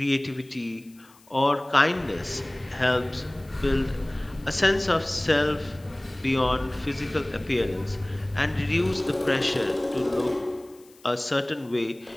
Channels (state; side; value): noise; left; hiss, 28 dB below the sound